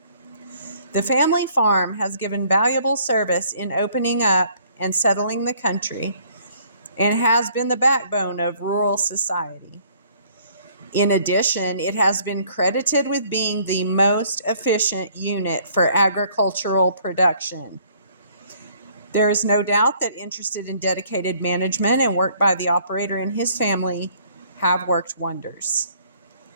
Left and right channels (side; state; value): both; inverted; correlation -0.60